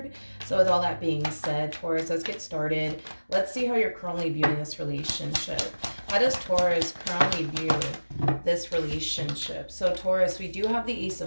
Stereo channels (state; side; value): inverted; both; correlation -1.00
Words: So, with all that being said, Taurus, let's get started. Let's see how you're currently viewing this relationship. How does Taurus currently view this relationship? So Taurus, we do have the Ace